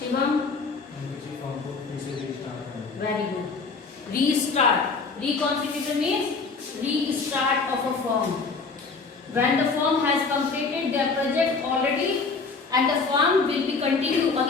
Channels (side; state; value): right; quieter; 4.5 dB